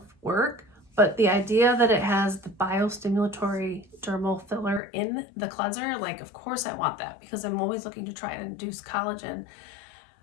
work. But the idea that it has the biostimulatory dermal filler in the cleanser, like of course I want that because I'm always looking to try and induce collagen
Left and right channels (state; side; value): drops out; right; at 4.8 s